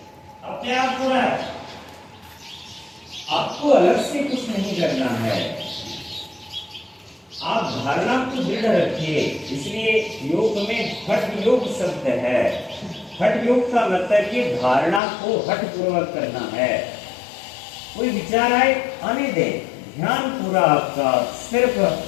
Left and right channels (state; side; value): drops out; right; at 15.0 s